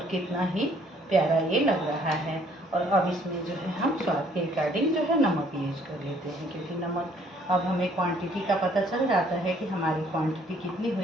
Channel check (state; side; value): normal; both; correlation 0.62